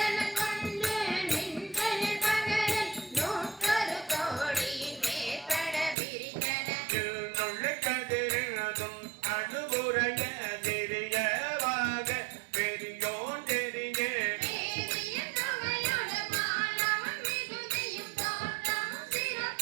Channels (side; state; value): left; drops out; at 6.0 s